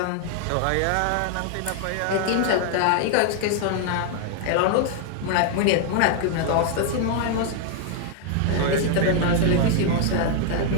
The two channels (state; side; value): different; both; correlation 0.00